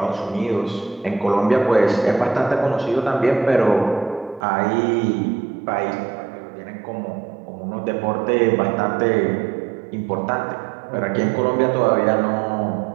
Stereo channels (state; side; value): drops out; left; at 4.5 s